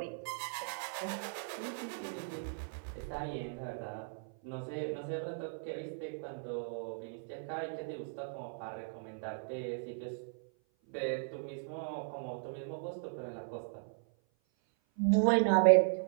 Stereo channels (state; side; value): silent; left; 53 dB below the other